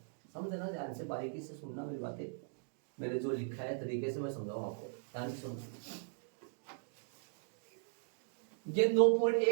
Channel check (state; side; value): silent; left; digital silence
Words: समझना, ध्यान से बारीकी से सुनना मेरी बातें। मैंने जो लिखा है तरीके से मैं समझाऊं आपको, ध्यान से सुनना। ये